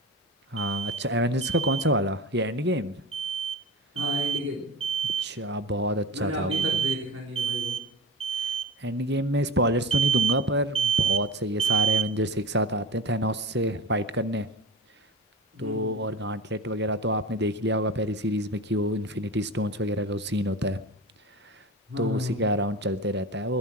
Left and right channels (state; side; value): normal; both; correlation 0.30